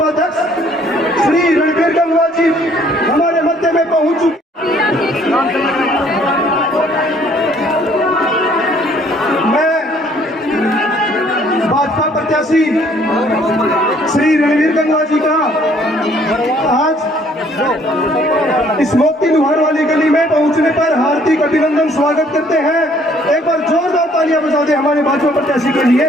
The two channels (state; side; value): normal; both; correlation 0.61